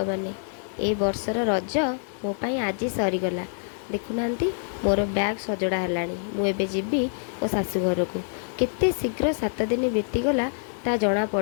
ए वर्षर रज मो पाई आज सरीगला देखुना मोर बैग सजड़ा है मुझे जीवी मो शाशु घर को केते शीघ्र 7 दिन बीतीगला ता जना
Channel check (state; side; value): silent; right; 61 dB below the other